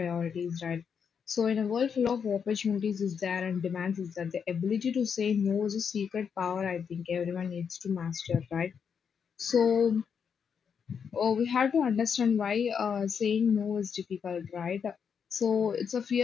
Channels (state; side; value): quieter; right; 6.9 dB